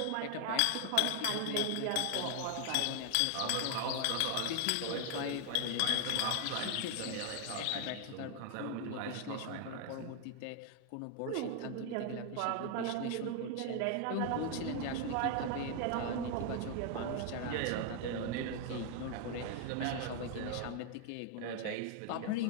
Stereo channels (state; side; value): different; both; correlation 0.00